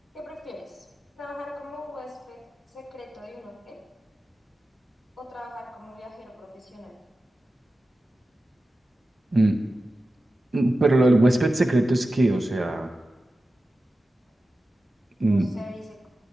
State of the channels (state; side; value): normal; both; correlation 0.94